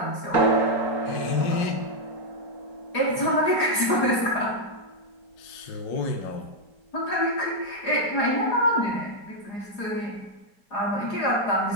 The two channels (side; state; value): right; late; 4.9 ms